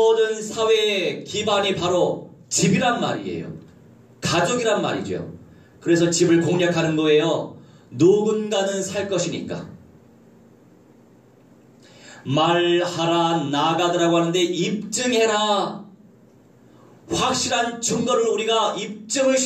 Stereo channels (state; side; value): identical; both; correlation 1.00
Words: 사회의 기반이 바로 집이란 말이에요. 가족이란 말이죠. 그래서 집을 공략하는 거예요. 누군가는 살 것이니까. 말하라, 나가더라고 하는데 입증해라. 확실한 증거를 우리가 입증을